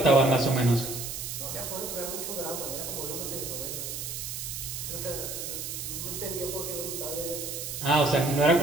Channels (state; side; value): noise; right; hiss, 6 dB below the sound